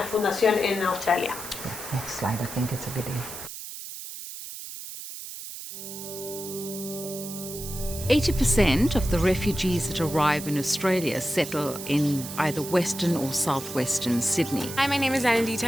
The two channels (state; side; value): noise; right; hiss, 10 dB below the sound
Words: fundación en Australia. Next slide, I think it's a video. 80% of the refugees that arrive in Australia settle in either Western or Southwestern Sydney. Hi, my name is Anandita